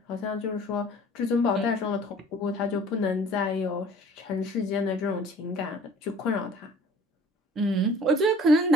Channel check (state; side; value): normal; both; correlation 0.50